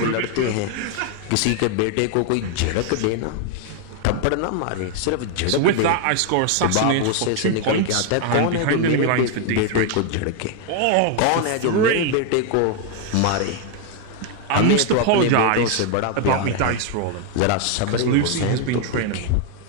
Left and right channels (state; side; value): different; both; correlation 0.00